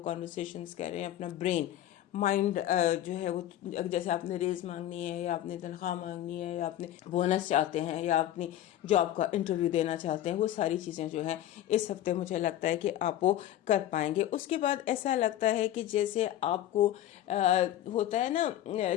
کانورسیشنز کر رہے ہیں، اپنا برین مائنڈ جو ہے وہ، جیسے آپ نے ریز مانگنی ہے، یا آپ نے تنخواہ مانگنی ہے، یا آپ نے بونس چاہتے ہیں، یا اپنی جاب کا انٹرویو دینا چاہتے ہیں، وہ ساری چیزیں جو ہیں اس ہفتے مجھے لگتا ہے کہ آپ وہ کر پائیں گے۔ اس کے بعد ایسا لگتا ہے کہ جیسے آپ کو ہوتا ہے نا،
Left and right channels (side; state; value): right; quieter; 12.6 dB